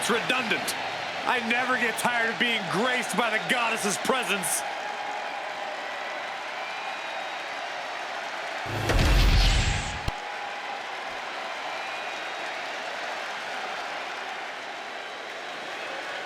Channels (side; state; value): both; identical; correlation 1.00